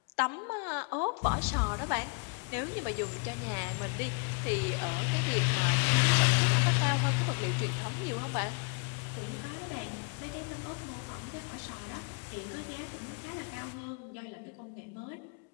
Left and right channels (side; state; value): right; quieter; 35.2 dB